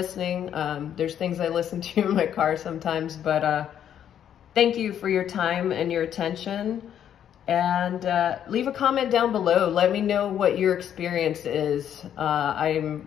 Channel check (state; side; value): quieter; right; 9.7 dB